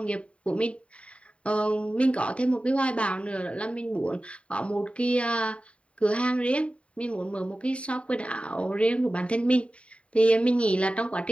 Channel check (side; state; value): right; late; 0.062 ms